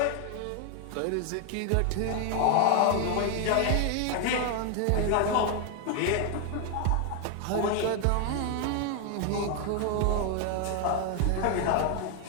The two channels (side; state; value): both; different; correlation 0.00